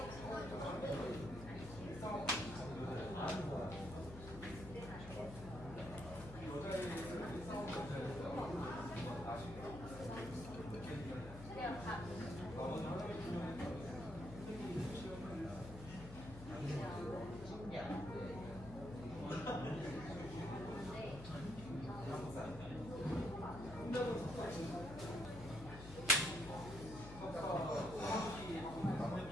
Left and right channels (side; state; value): left; noise; hum, 12 dB below the sound